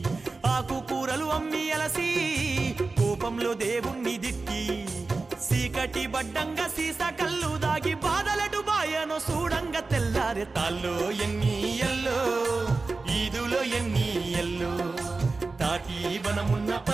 ఆకు కూరలు అమ్మి అలసి కోపంలో దేవుణ్ణి దిక్కి సీకటి బడ్డంగా సీస కళ్ళు దాగి బాధలటు బాయనో చూడంగా తెల్లారే తాల్లో ఎన్ని ఎల్లో ఈదులో ఎన్ని ఎల్లో తాటి వనమున్న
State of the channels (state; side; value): quieter; left; 3.8 dB